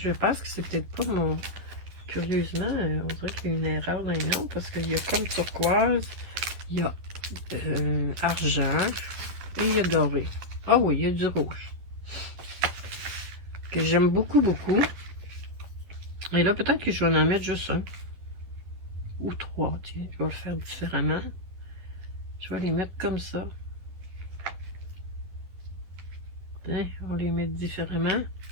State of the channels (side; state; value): left; late; 11 ms